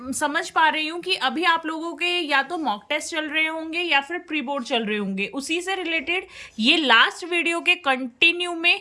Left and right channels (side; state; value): both; identical; correlation 1.00